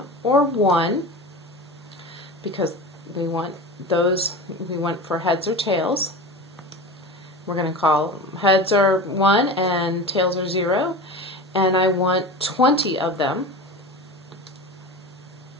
or 1, because we want those, we want for heads or tails. We're going to call heads are 1 and tails are 0. And I want 20 of them.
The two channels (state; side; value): normal; both; correlation 0.30